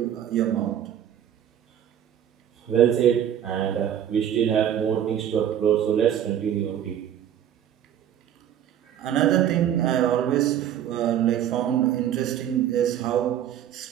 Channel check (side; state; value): left; quieter; 10.2 dB